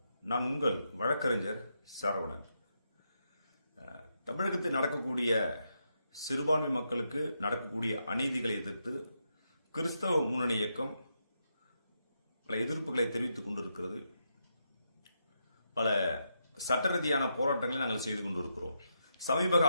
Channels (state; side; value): inverted; both; correlation -0.82